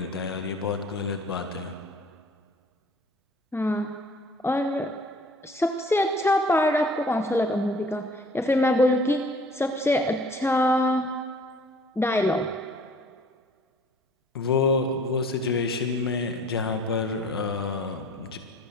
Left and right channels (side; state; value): both; normal; correlation 0.52